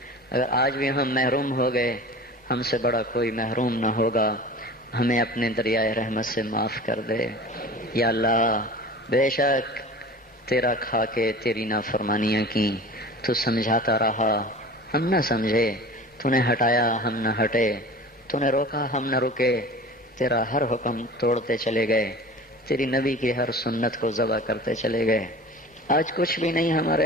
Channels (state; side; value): normal; both; correlation 0.39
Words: اگر آج بھی ہم محروم ہو گئے، ہم سے بڑا کوئی محروم نہ ہوگا، ہمیں اپنے دریائے رحمت سے معاف کر دے۔ یا اللہ بے شک تیرا کھا کے تیری نافرمانیاں کی، تو سمجھاتا رہا ہم نہ سمجھے، تو نے ہٹایا ہم نہ ہٹے، تو نے روکا ہم نہ رکے، تیرا ہر حکم توڑتے چلے گئے، تیری نبی کی ہر سنت کو ذبح کرتے چلے گئے۔ آج کچھ بھی نہیں